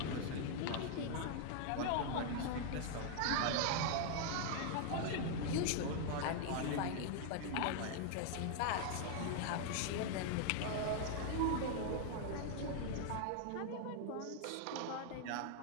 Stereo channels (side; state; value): both; different; correlation 0.00